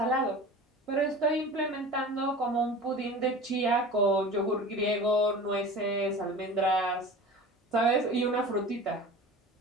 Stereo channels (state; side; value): normal; both; correlation 0.36